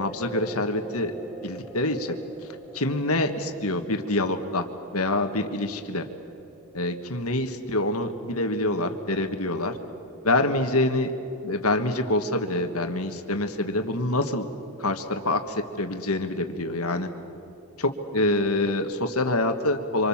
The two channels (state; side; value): normal; both; correlation -0.02